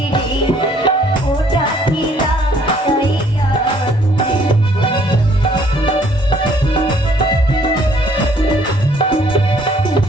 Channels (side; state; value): both; normal; correlation 0.62